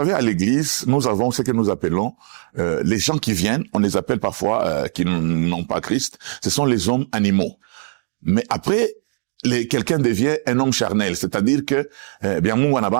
à l'église, nous avons ce que nous appelons les gens qui viennent, on les appelle parfois qui n'ont pas Christ, ce sont les hommes animaux. Mais après, quelqu'un devient un homme charnel, c'est-à-dire que bien Mungu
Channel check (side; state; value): left; silent; digital silence